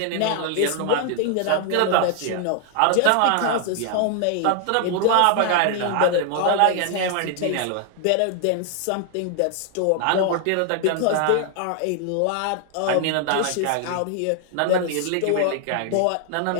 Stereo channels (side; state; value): both; different; correlation 0.00